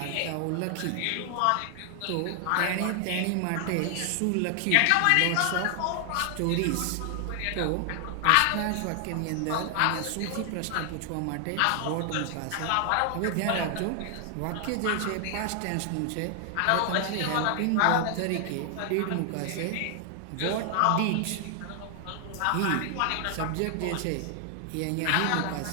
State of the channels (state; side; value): different; both; correlation 0.00